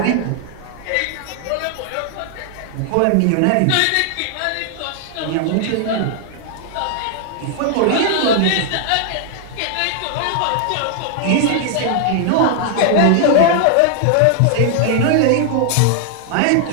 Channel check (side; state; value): both; different; correlation 0.00